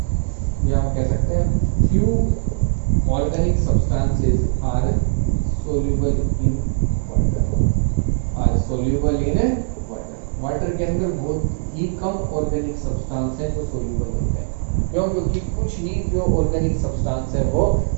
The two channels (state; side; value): silent; left; digital silence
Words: या हम कह सकते हैं few organic substances are soluble in water, are soluble in water. Water के अंदर बहुत ही कम ऑर्गेनिक सब्सटेंस है जो सोल्यूबल होते हैं। क्यों? क्योंकि कुछ ही जो ऑर्गेनिक सब्सटेंस है वो